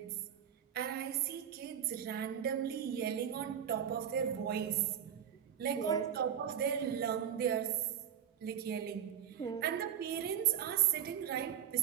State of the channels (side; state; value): left; quieter; 9.1 dB